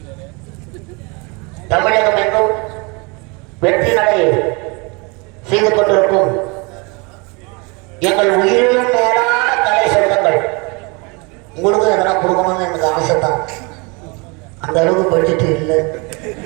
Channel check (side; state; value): left; quieter; 29.5 dB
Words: தமிழகம் எங்கும் வெற்றி நடை செய்து கொண்டிருக்கும் எங்கள் உயிரிலும் மேலான கலை சொந்தங்கள். உங்களுக்கும் எதனா கொடுக்கணும்னு எனக்கு ஆசை தான். அந்த அளவுக்கு பட்ஜெட் இல்லை.